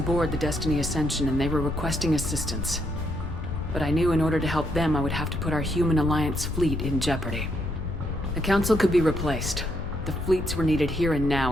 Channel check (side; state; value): left; noise; rumble, 7 dB below the sound